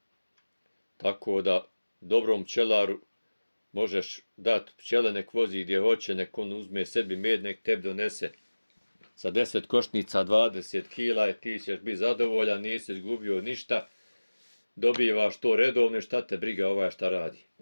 Tako da dobrom pčelaru možeš dati pčele, nek vozi gdje hoće, nek on uzme sebi med, nek tebi donese sa 10 košnica 20 kila i ti ćeš biti zadovoljan, nisi izgubio ništa, dobivaš to redovno, šta te briga ovaj šta radi.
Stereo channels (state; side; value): inverted; both; correlation -1.00